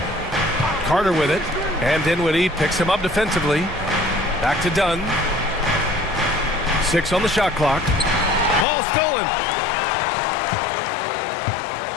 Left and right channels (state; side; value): drops out; right; at 8.7 s